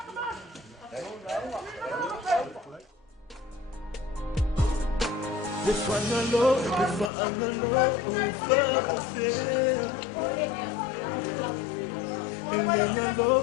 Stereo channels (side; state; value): right; drops out; at 7.1 s